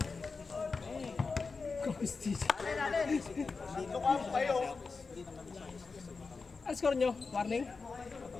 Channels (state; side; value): quieter; right; 4.5 dB